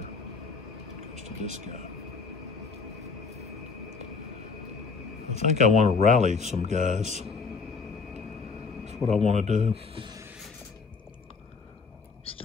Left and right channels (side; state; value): right; quieter; 4.8 dB